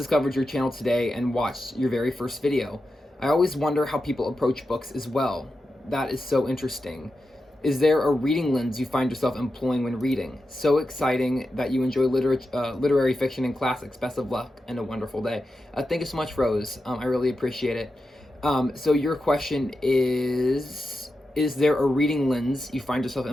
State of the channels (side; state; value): both; normal; correlation 0.90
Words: your channel today and watched your very first video. I always wonder how people approach books as well. That is so interesting. Is there a reading lens you find yourself employing when reading? So exciting that you enjoy literary fiction and classics. Best of luck and a wonderful day." Thank you so much, Rose. I really appreciate it. So your question is there a reading lens you find yourself